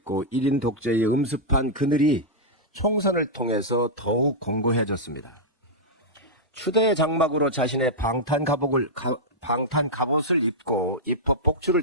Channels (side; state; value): both; normal; correlation -0.08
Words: 1인 독재의 음습한 그늘이 총선을 통해서 더욱 공고해졌습니다. 추대의 장막으로 자신의 방탄 갑옷을 입고 입법